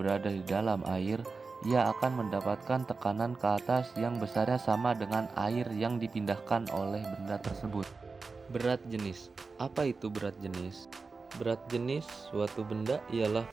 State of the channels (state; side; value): quieter; left; 4.3 dB